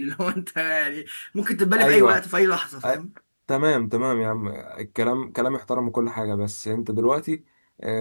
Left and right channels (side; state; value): both; inverted; correlation -1.00